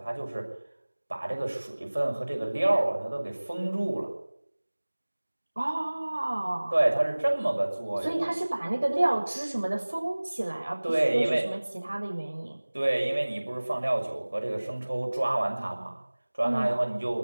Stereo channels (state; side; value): inverted; both; correlation -1.00